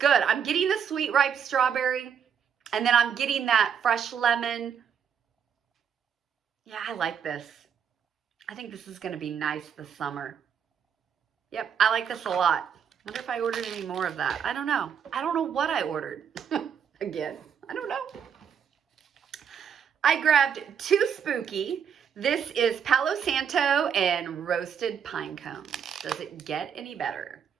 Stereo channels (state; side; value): quieter; left; 7.7 dB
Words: I'm getting the sweet ripe strawberry, and then I'm getting that fresh lemon. Yeah, I like this. I think this is going to be nice this summer. Yep, I like this a lot. I wonder if I ordered any more of that. I don't know. I don't know what I ordered. Again, I don't know. I grabbed 2 Spooky. This is Palo Santo and roasted pine cones. Does it get any better?